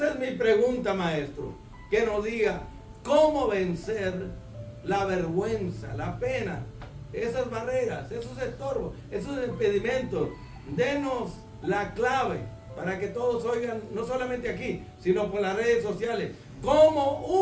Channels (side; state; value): both; identical; correlation 1.00